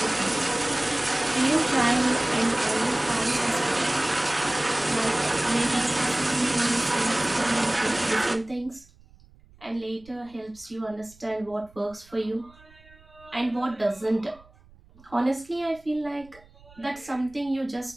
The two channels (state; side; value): noise; right; rumble, 26 dB below the sound